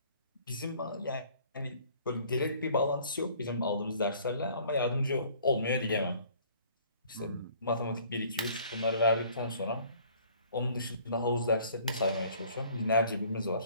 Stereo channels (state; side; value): inverted; both; correlation -0.56